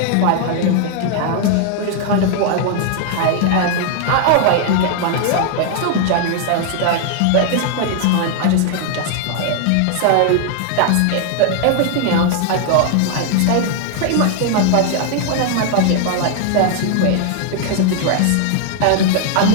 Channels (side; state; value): both; different; correlation 0.00